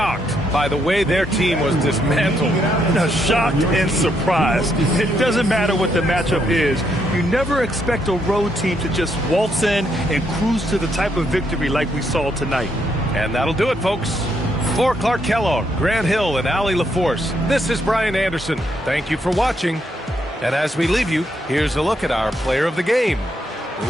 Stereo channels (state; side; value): normal; both; correlation 0.76